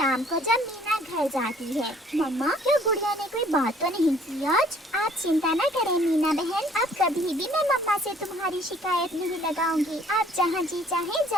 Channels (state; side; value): normal; both; correlation 0.58